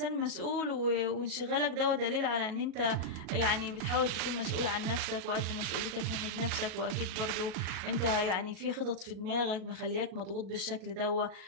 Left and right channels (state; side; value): late; left; 37 ms